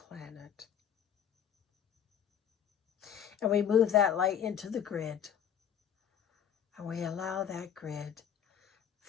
And we move that light into the grid. And we allow that grid,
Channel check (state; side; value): quieter; right; 8.9 dB